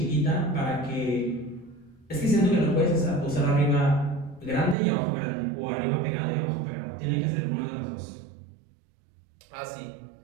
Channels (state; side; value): drops out; left; at 4.8 s